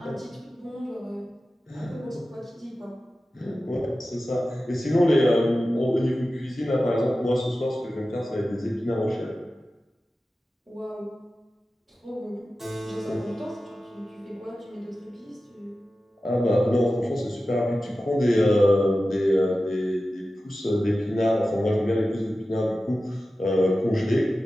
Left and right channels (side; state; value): both; normal; correlation 0.94